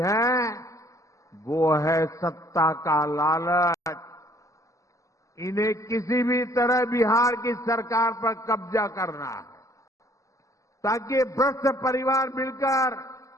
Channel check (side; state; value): right; late; 0.16 ms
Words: वो है सत्ता का लालच। इन्हें किसी भी तरह बिहार की सरकार पर कब्जा करना है, ताकि भ्रष्ट परिवार मिलकर